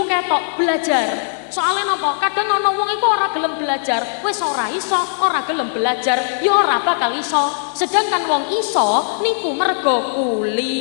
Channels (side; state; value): right; silent; digital silence